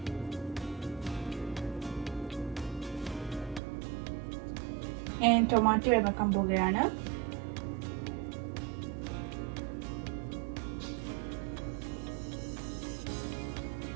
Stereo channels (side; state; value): left; drops out; at 3.6 s